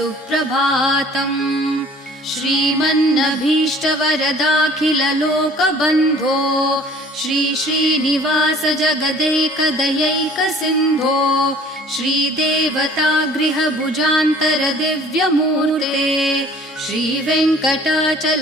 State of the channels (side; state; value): both; normal; correlation 0.51